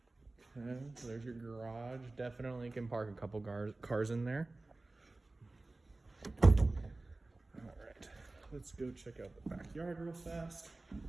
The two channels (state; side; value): quieter; left; 3.1 dB